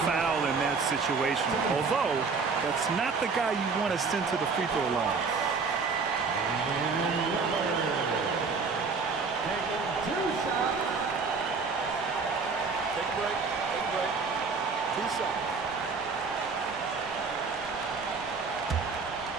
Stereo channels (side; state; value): left; quieter; 4.7 dB